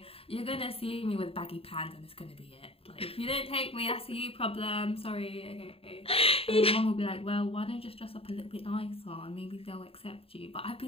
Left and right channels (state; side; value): late; right; 0.27 ms